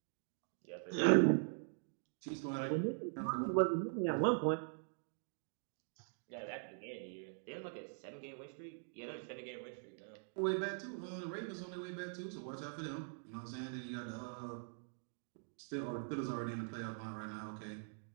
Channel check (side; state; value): left; silent; digital silence